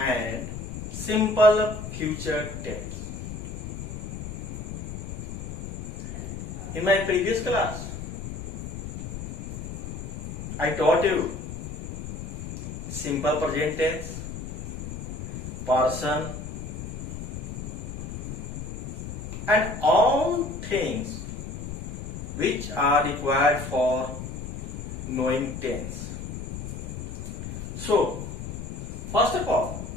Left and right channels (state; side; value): noise; left; rumble, 7 dB below the sound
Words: simple future tense. In my previous class, I taught you simple present tense, person, and all things which are required for knowing tense. So, first of all,